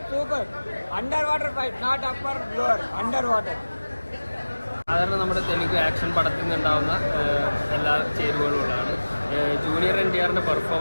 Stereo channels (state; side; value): inverted; both; correlation -1.00